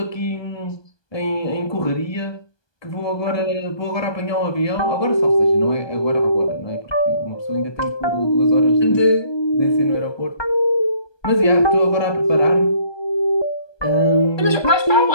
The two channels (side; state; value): right; late; 1.2 ms